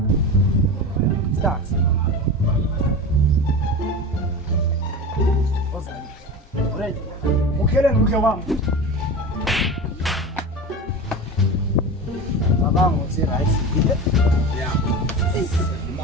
Start. Ozani. Ready. Ukhele ngudla kwami. Baba ngothi right. Yeah.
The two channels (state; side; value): normal; both; correlation 0.29